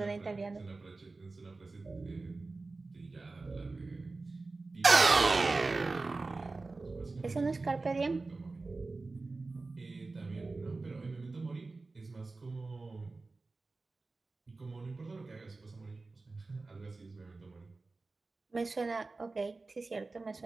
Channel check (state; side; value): quieter; left; 3.6 dB